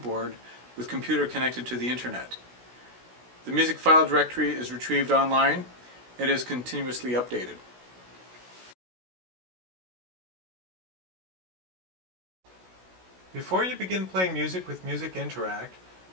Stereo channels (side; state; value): left; late; 16 ms